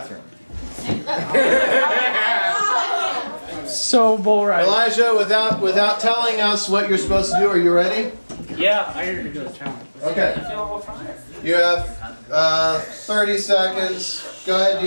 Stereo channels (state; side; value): inverted; both; correlation -1.00